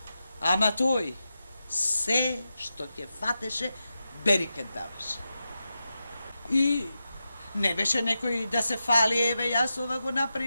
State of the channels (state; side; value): inverted; both; correlation -0.90